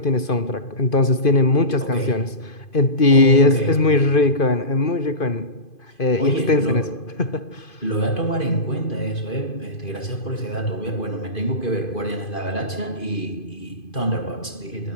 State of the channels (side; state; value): right; late; 2.5 ms